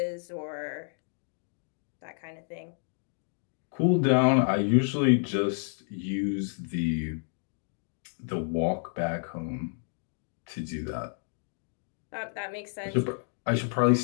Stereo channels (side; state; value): right; silent; 58 dB below the other